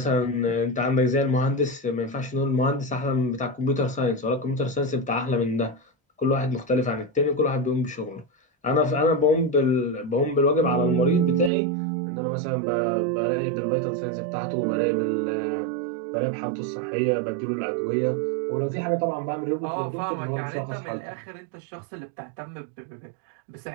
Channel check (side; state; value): left; drops out; at 11.5 s